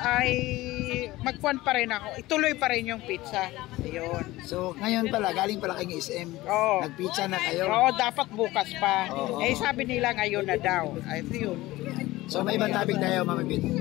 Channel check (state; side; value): quieter; right; 18.3 dB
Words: magkuhan pa rin ako. Ituloy pa rin yung pizza. Ayun. So ngayon pala galing pala kay SM. Nagpizza na kayo. Oo, dapat bukas pa. Sabi nila ngayon na daw. Ay yun. So may ibang topic tayo, Mama Bet.